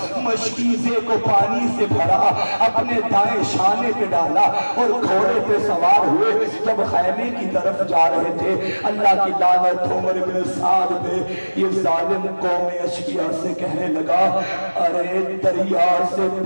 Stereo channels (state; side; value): inverted; both; correlation -1.00